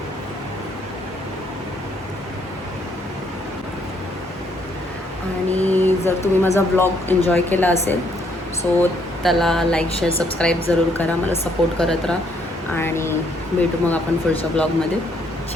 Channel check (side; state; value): both; normal; correlation 0.69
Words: आणि जर तुम्ही माझा ब्लॉग एन्जॉय केला असेल सो त्याला लाईक शेअर सबस्क्राईब जरूर करा. मला सपोर्ट करत राहा आणि भेटू मग आपण पुढच्या ब्लॉगमध्ये.